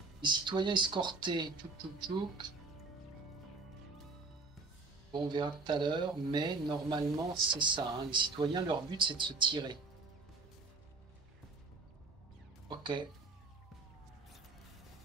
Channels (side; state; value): left; quieter; 3.8 dB